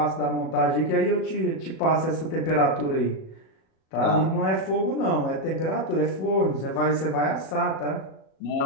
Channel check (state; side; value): late; right; 37 ms